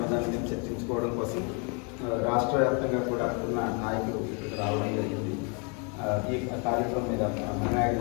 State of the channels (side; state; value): right; quieter; 35.0 dB